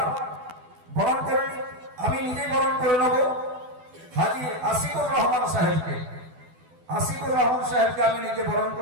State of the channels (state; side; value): late; left; 12 ms